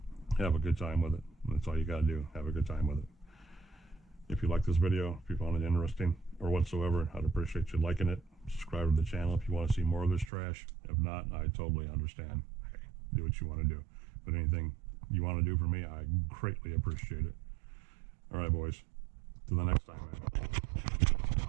Have a good time with it. That's all you gotta do. Have a good time with it. If you like this video, if you found it interesting or whatsoever, I'd appreciate you liking it. Subscribe to the channel if you want to see more of this trash. If not, I totally understand. Hey, do what you want to do. But anything you want to do for me, I greatly appreciate it. All right, boys. Till the next time, man.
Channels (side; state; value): left; drops out; at 10.3 s